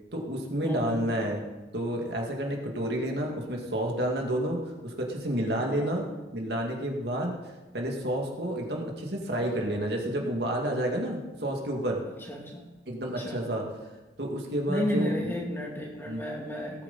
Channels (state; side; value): normal; both; correlation 0.53